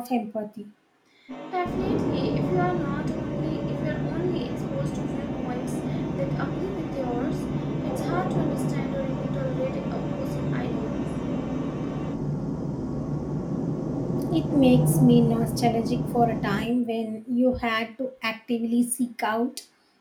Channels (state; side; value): identical; both; correlation 1.00